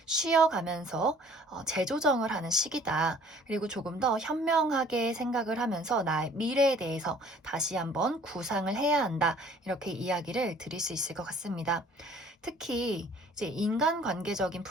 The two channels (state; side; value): normal; both; correlation 0.54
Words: 쉬어가면서 재조정을 하는 시기다. 그리고 조금 더 현명하게 생각을 하면서 나의 미래에 대해서 다시 한번 구상을 해야 한다. 이렇게 이야기를 드릴 수 있을 것 같습니다. 특히 이제 인간관계적인